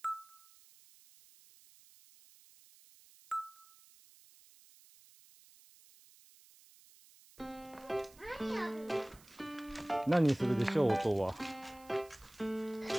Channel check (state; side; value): noise; right; hiss, 25 dB below the sound